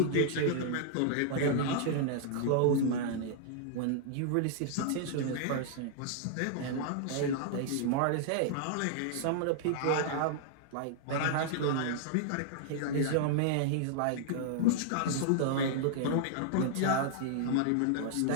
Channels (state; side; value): different; both; correlation -0.01